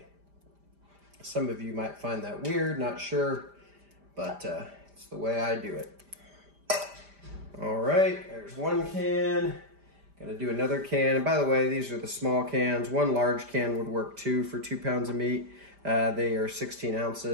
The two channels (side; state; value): left; late; 5.0 ms